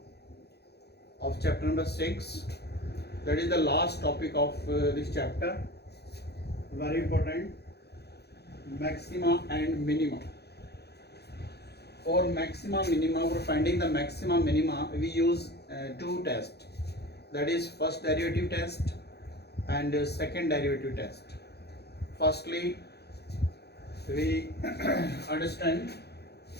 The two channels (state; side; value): late; right; 0.48 ms